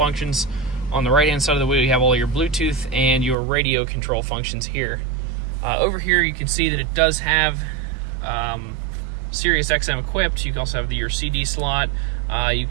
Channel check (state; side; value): drops out; left; at 3.4 s